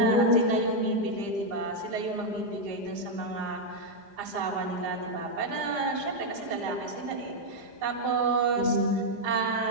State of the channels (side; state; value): left; late; 4.9 ms